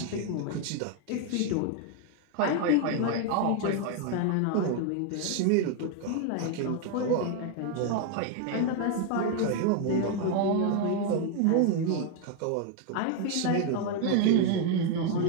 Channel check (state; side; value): different; both; correlation 0.01